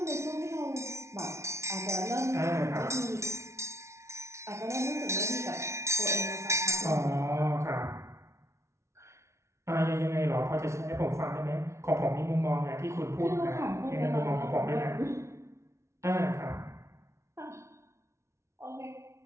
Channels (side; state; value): left; late; 0.13 ms